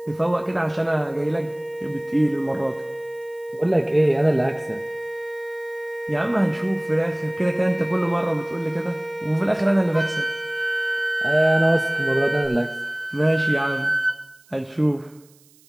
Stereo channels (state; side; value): noise; right; hiss, 29 dB below the sound